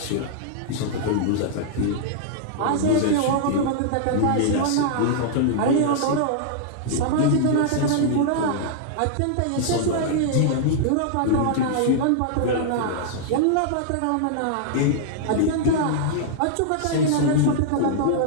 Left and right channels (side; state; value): both; different; correlation -0.01